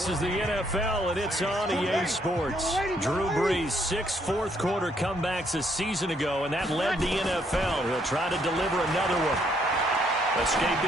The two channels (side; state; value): both; normal; correlation 0.70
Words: is the NFL, and it's on EA Sports. Drew Brees, 6 fourth-quarter comebacks a season ago, and that led the NFL. He'll try to deliver another one.